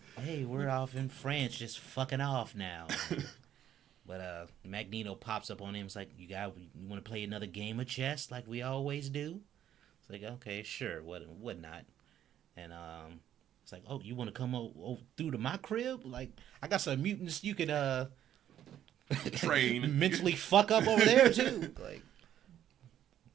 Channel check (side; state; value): left; quieter; 10.9 dB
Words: Hey, we're off in France, just fucking off now. But Magneto pops up on him. It's like, you want to play another game of chess like we always do? It's like, okay, sure, what not? And it's like, oh, you want to come through to my crib? Like, I got some mutants you could train mentally fuck up over there too. Like,